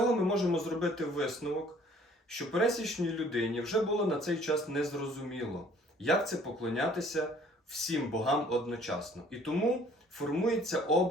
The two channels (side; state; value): both; normal; correlation 0.56